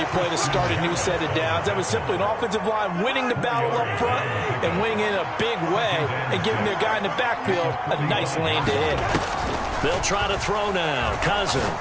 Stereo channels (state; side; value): identical; both; correlation 1.00